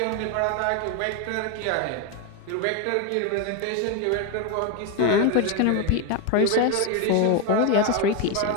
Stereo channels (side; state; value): both; different; correlation 0.02